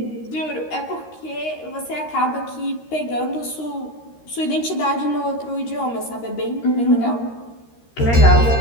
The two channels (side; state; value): right; late; 13 ms